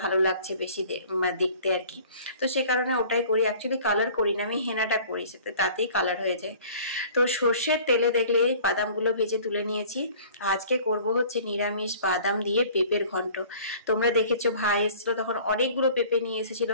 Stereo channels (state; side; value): inverted; both; correlation -0.49